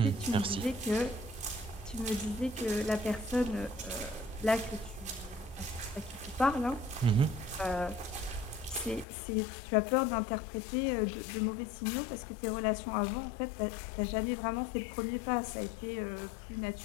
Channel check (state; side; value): drops out; right; at 9.1 s